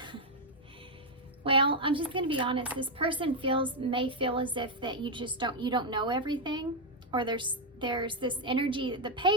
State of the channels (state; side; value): normal; both; correlation 0.01